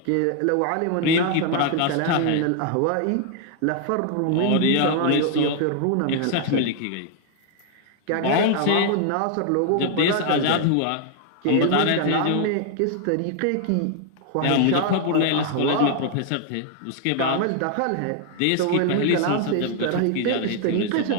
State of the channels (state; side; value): different; both; correlation 0.00